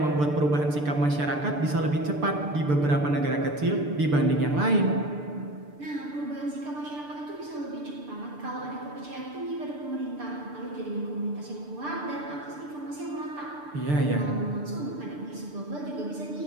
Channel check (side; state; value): left; late; 6.8 ms